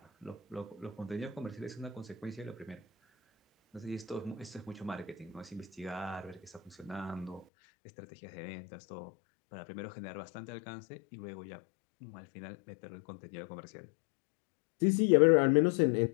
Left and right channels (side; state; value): right; drops out; at 7.5 s